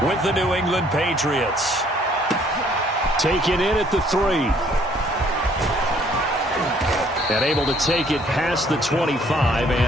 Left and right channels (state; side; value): normal; both; correlation 0.62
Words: with the New England Patriots. Taken in at the 3. And able to take it past the 25